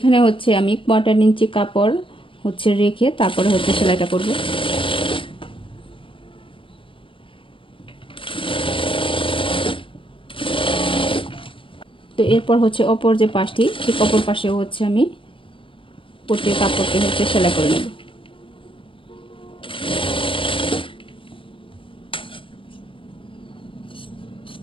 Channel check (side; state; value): right; late; 0.25 ms